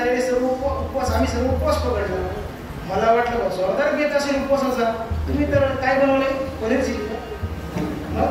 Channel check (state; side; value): identical; both; correlation 1.00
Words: सर्व उपवास आम्ही सर्व उपवास पकडला. मला वाटलं जोरदार घेत असेल उपवासाचा. तुम्ही तर काय बनवले, पनीर चिली का?